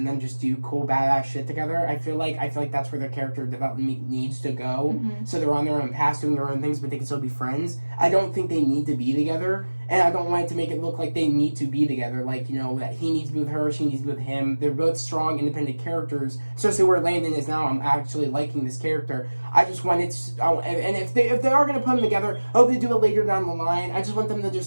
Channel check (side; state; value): both; inverted; correlation -1.00